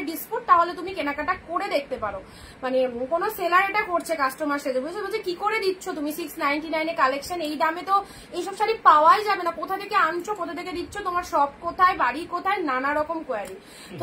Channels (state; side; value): identical; both; correlation 1.00